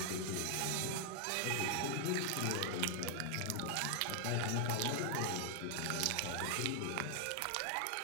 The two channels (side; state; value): both; different; correlation 0.00